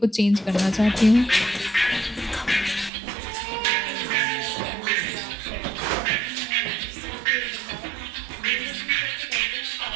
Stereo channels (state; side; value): drops out; left; at 2.9 s